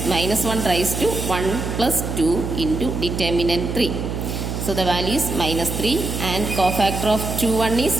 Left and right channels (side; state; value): right; noise; hum, 4 dB below the sound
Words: minus 1 raised to 1 plus 2 into determinant 3. So the value is minus 3, and cofactor of 21